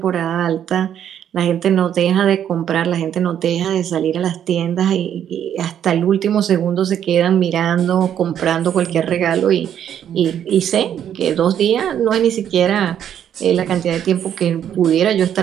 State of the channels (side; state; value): left; quieter; 9.7 dB